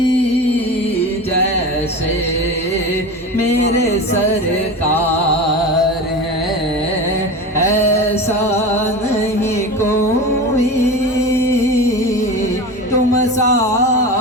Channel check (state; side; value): normal; both; correlation 0.29